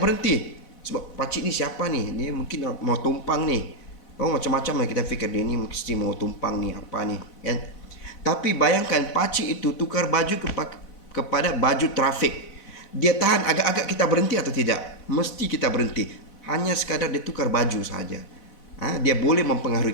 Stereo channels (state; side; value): late; right; 4.0 ms